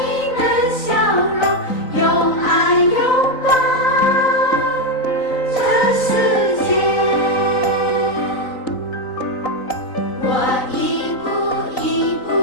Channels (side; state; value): right; late; 3.9 ms